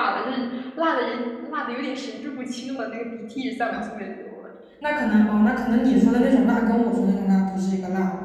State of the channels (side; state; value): both; identical; correlation 1.00